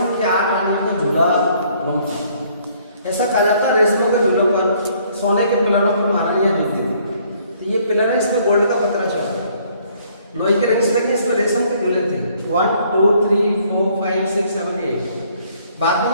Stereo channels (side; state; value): both; inverted; correlation -0.63